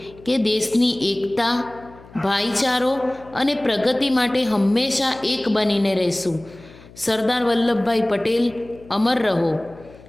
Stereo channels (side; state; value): left; noise; hum, 22 dB below the sound